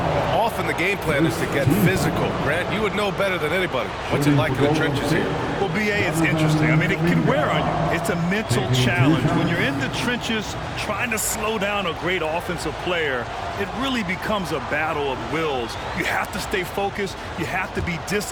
often the game plan is to get physical. Grant, you would know better than anybody. What's it like in the trenches here? Well, BA, it's interesting. I mean, it can wear on you. It's a mental challenge. When you're in the trenches trying to slow down a great offensive player, it really becomes a battle of wills. You have to stay focused. You have to be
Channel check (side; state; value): both; identical; correlation 1.00